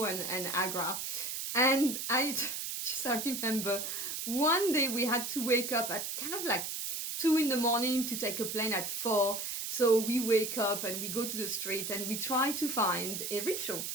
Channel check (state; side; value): noise; right; hiss, 4 dB below the sound